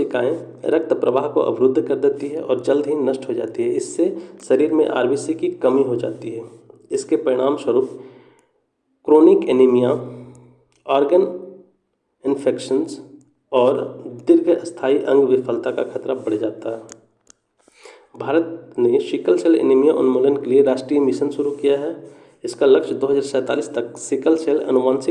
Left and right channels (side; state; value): both; identical; correlation 1.00